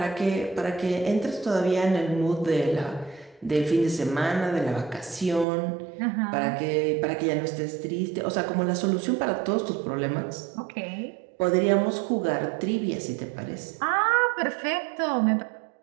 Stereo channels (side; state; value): left; drops out; at 5.5 s